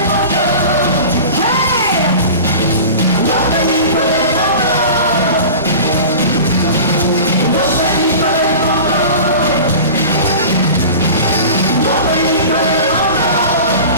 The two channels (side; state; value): both; inverted; correlation -0.36